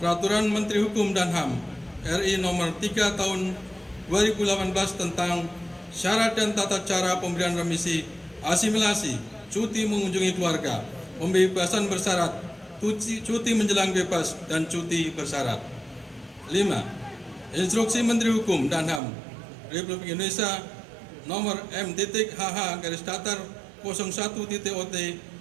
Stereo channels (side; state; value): left; drops out; at 19.0 s